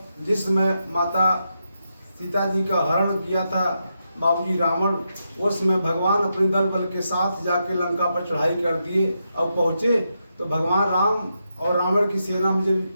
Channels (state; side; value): inverted; both; correlation -0.84